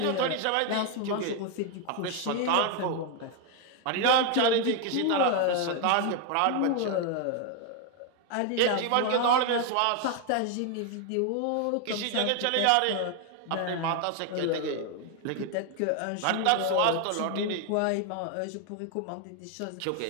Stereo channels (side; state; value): both; different; correlation 0.01